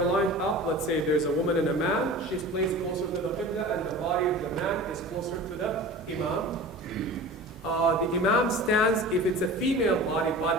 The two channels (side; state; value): both; normal; correlation 0.37